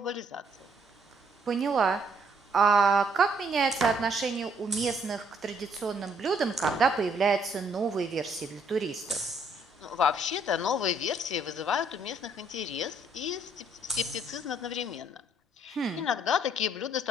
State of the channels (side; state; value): both; normal; correlation 0.67